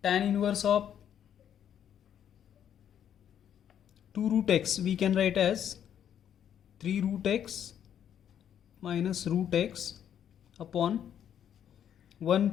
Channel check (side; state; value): right; quieter; 9.5 dB